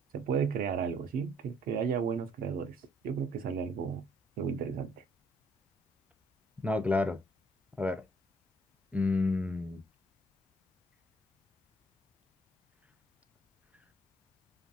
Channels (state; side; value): normal; both; correlation 0.63